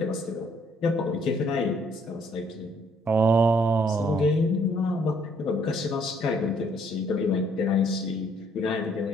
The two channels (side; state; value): both; normal; correlation 0.65